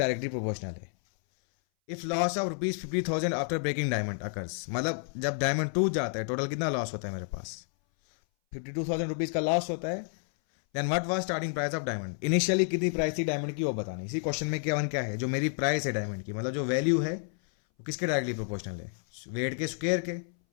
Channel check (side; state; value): right; silent; 58 dB below the other